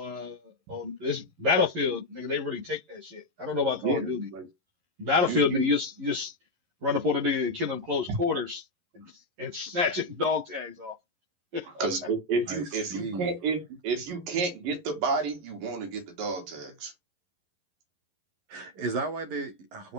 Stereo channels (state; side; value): late; left; 11 ms